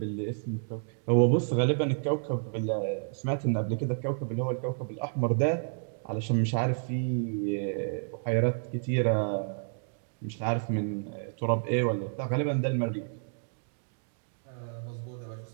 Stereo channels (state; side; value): silent; left; digital silence